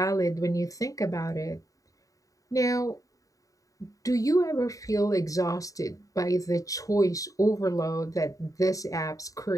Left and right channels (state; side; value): late; right; 0.16 ms